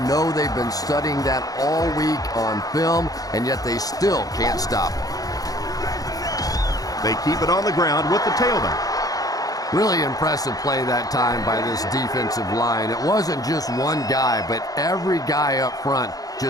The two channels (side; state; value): right; late; 0.18 ms